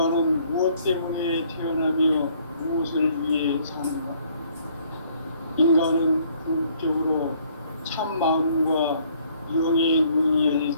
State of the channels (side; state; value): both; inverted; correlation -0.63